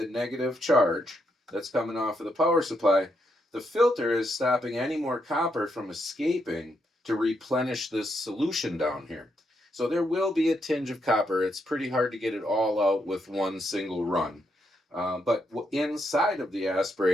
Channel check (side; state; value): both; normal; correlation 0.79